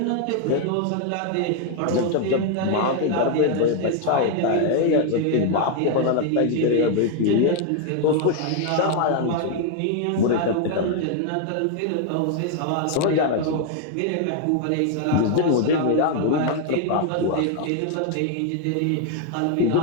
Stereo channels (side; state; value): both; different; correlation 0.00